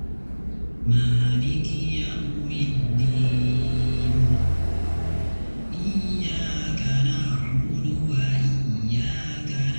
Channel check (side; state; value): both; inverted; correlation -1.00